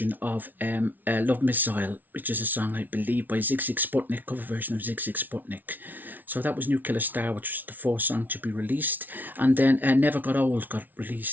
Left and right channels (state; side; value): late; left; 0.083 ms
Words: of Love Missile, which is a song, I believe, by Zig Zig Sputnik, cover version of Zig Zig Sputnik. So that was New Killer Star, which was the fourth song to be released. And then Never Got Old got